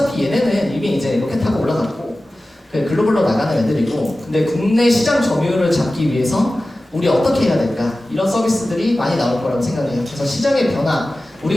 얘네는 이미 이제 로켓 타고 올라갔고 글로벌로 나가는 애들이고 근데 국내 시장 점유율을 잡기 위해서 우리 어떻게 해야 될까? 이런 서비스들이 많이 나올 거라고 생각해요. 그래서 시장의 변화,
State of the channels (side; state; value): both; normal; correlation 0.96